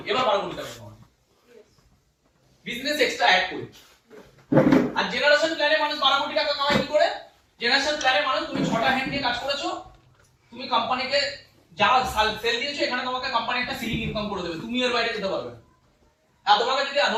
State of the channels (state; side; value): identical; both; correlation 1.00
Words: এবার 12 কোটি টাকা কামাবে। বিজনেস এক্সট্রা অ্যাড করে। আর জেনারেশন প্ল্যানে মানুষ 12 কোটি টাকা কামায় কি করে? জেনারেশন প্ল্যানে মানুষ তুমি 6টা হ্যান্ড নিয়ে কাজ করেছো, তুমি কোম্পানিকে যা সেল দিয়েছো, এখানে তোমাকে কোম্পানি একটা সিলিং ইনকাম করে দেবে, তুমি এর বাইরে যেতে পারবে না। আর তোমাকে যদি